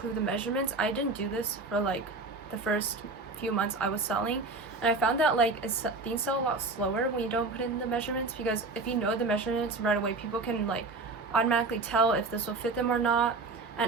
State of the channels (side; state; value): left; quieter; 3.6 dB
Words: the measurements. I didn't do this for like the first few months I was selling, and I found that like things sell a lot slower when you don't put in the measurements, because if you know the measurements right away, people can like automatically tell if this will fit them or not.